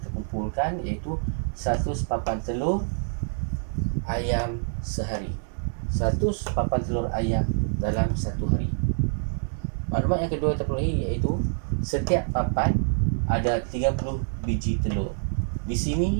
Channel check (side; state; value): left; silent; digital silence